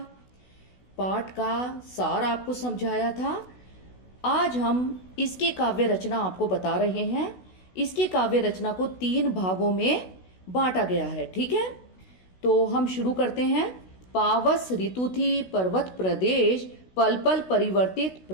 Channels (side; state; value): right; late; 16 ms